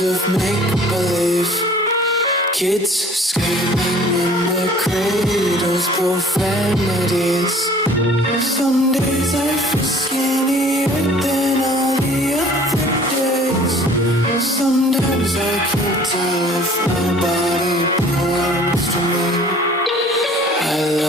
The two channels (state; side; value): normal; both; correlation 0.51